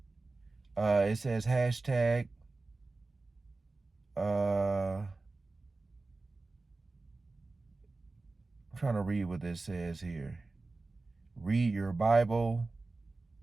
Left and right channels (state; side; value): quieter; left; 3.4 dB